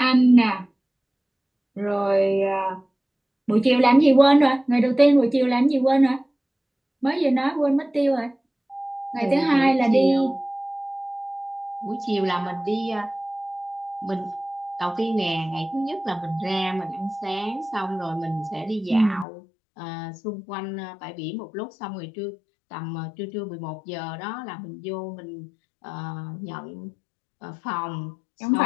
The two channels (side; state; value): right; drops out; at 19.2 s